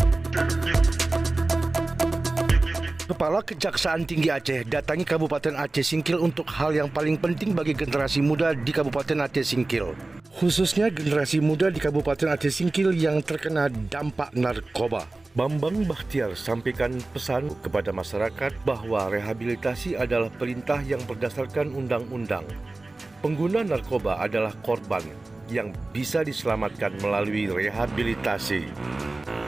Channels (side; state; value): left; quieter; 3.1 dB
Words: Kepala Kejaksaan Tinggi Aceh datangi Kabupaten Aceh Singkil untuk hal yang paling penting bagi generasi muda di Kabupaten Aceh Singkil. Khususnya generasi muda di Kabupaten Aceh Singkil yang terkena dampak narkoba. Bambang Bahtiar sampaikan pesan kepada masyarakat bahwa rehabilitasi adalah perintah yang berdasarkan undang-undang. Pengguna narkoba adalah korban yang bisa diselamatkan melalui rehabilitasi.